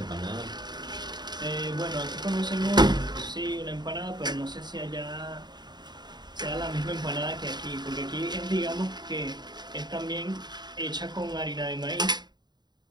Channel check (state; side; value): late; left; 0.21 ms